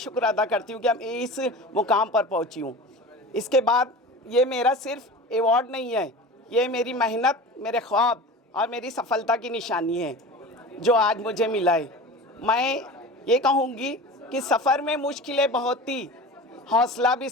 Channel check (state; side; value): normal; both; correlation 0.34